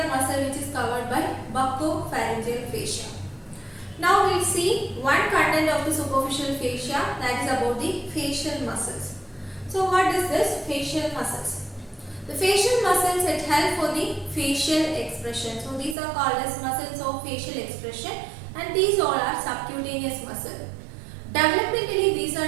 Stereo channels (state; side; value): drops out; left; at 16.0 s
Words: muscle, which is covered by buccopharyngeal fascia. Now we will see one content of the superficial fascia, that is about the facial muscles. So what is this facial muscles? The facial muscles, it help for the facial expression. So these are called as muscles of facial expression and these all are subcutaneous muscle. Developmentally, these are